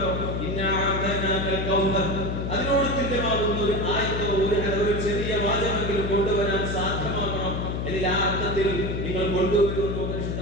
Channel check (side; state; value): left; noise; hum, 2 dB below the sound